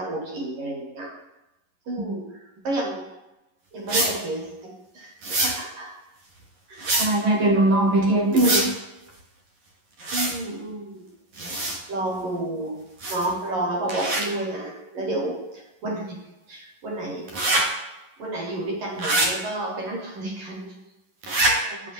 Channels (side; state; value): left; late; 11 ms